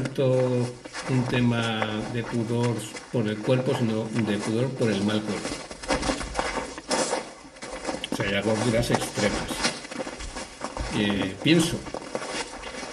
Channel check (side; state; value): both; identical; correlation 1.00